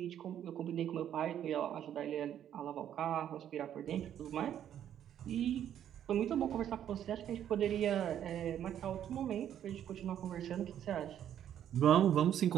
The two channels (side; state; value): left; quieter; 10.3 dB